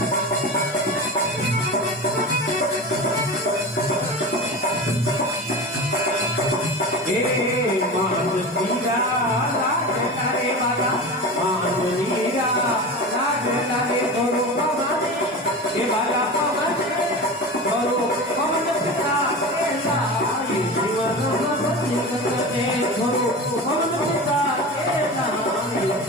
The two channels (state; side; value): normal; both; correlation 0.29